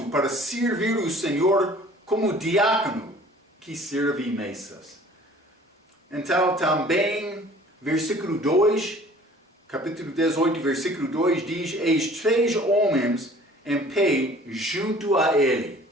para servir o Senhor como diácono que serve mesas. Então, também, versículo 2, capítulo 18, versículo 2, diz: eis 3 homens em pé junto a ele.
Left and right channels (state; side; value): normal; both; correlation 0.50